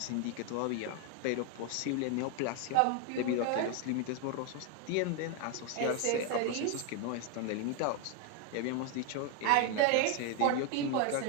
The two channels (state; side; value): different; both; correlation 0.01